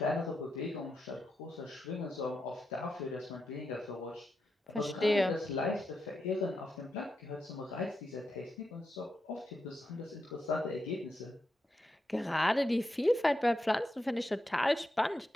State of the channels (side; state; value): both; normal; correlation 0.86